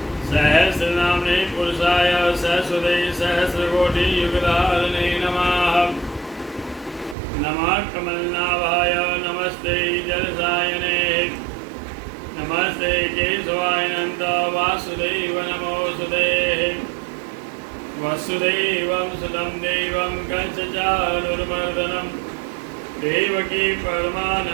सहस्रनाम्ने पुरुषाय सहस्रते सहस्रकोटियुगधारिणे नमः। नमः कमलनाभाय नमस्ते जलसायने नमस्ते केशवाय नन्द वासुदेव नमोऽस्तुते। वसुदेवं सुतं देवं कंसचाणूरमर्दनं देवकी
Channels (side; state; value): left; drops out; at 7.2 s